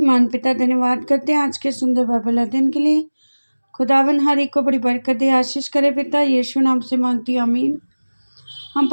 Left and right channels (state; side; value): inverted; both; correlation -1.00